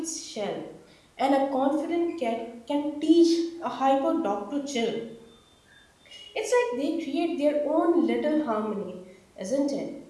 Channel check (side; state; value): both; identical; correlation 1.00